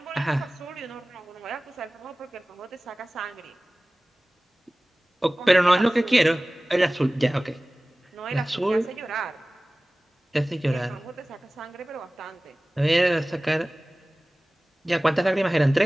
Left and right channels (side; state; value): both; normal; correlation 0.98